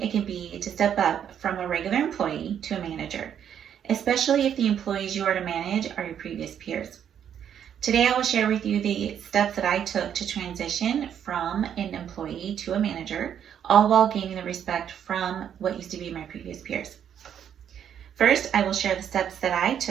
it can be to step up from a regular employee to a manager, especially if the employees you are to manage are your previous peers. Today I will share with you the steps that I took to transition from an employee to a manager, all while gaining the respect from what used to be my previous peers. First, I will share the steps that I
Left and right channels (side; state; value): left; quieter; 9.0 dB